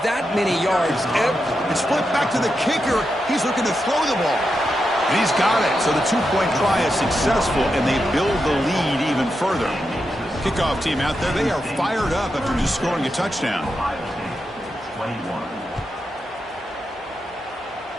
that many yards, it's flipped back to the kicker. He's looking to throw the ball. And he's got it. So the two-point try is successful, and they build the lead even further. Kickoff team out there, they are fired up after just scoring a touchdown.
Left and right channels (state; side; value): normal; both; correlation 0.87